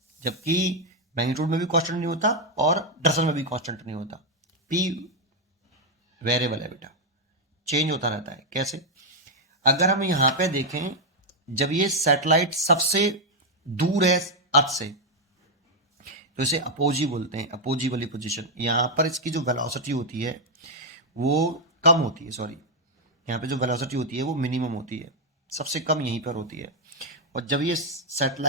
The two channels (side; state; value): both; normal; correlation 0.00